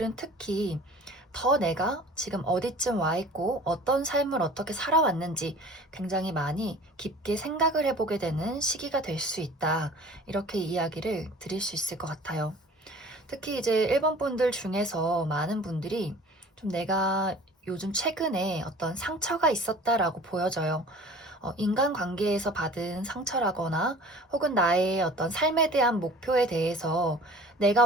특히 더 내가 지금 어디쯤 와 있고 어떤 삶을 어떻게 살아왔는지 굉장히 많이 깊게 생각을 해보게 되는 시기가 될 수 있다. 이렇게 이야기를 드릴 수 있을 것 같아요. 특히 이제 1번 분들 중에서 많은 분들이 좀 내가 요즘 최근에 어떤 상처가 있었다라고 보여져요. 인간관계에서 받은 상처라거나 혹은 나의 어떤 삶에 대한 목표에 대해서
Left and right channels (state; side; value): normal; both; correlation 0.45